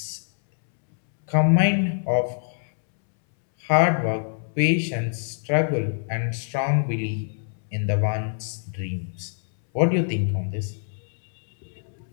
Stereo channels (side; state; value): right; silent; 62 dB below the other